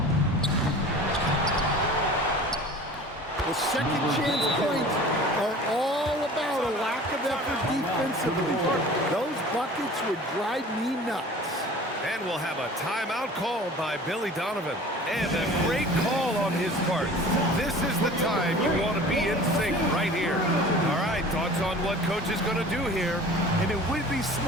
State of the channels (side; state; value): both; normal; correlation 0.43